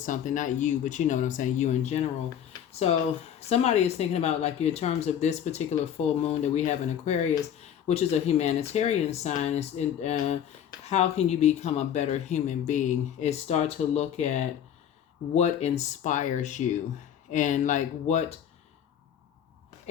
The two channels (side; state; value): right; quieter; 9.5 dB